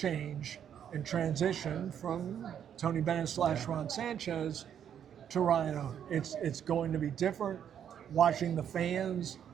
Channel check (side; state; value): left; quieter; 9.0 dB